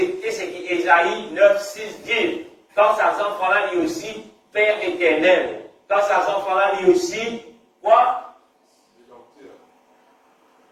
ce qu'Ésaïe 9, 6 dit. Quand ces enfants-là dit aussi Père éternel. Quand ces enfants-là dit aussi quoi?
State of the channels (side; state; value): both; identical; correlation 1.00